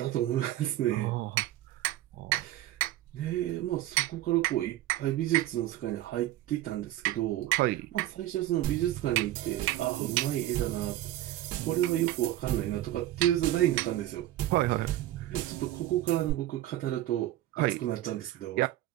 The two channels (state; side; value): quieter; left; 14.4 dB